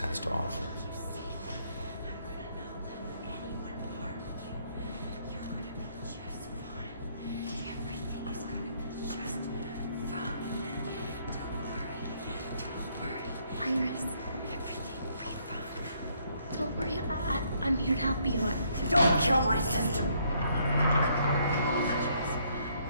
to offer. Iris, everything will be fine. Don't worry, I'm here to help you. Don't kill my sister!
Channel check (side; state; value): both; inverted; correlation -0.69